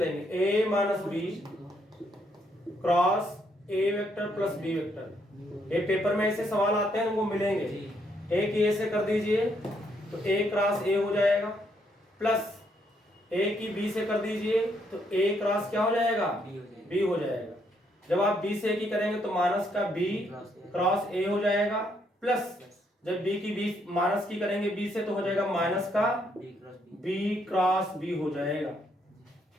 a minus B cross a vector plus b vector. ये पेपर में ऐसे सवाल आते हैं वो मिलेंगे, a की a से कर दीजिए तो a क्रॉस a हो जाएगा, प्लस a की b से कर दीजिए तो a क्रॉस क्या हो जाएगा b हो जाएगा। जब आप b से a की करेंगे तो माइनस का b क्रॉस a हो जाएगा, प्लस जब b की b माइनस की करेंगे b से तो हो जाएगा माइनस का b क्रॉस b हो जाएगा।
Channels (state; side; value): normal; both; correlation 0.73